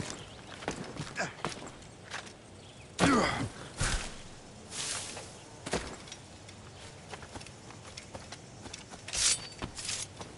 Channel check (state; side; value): identical; both; correlation 1.00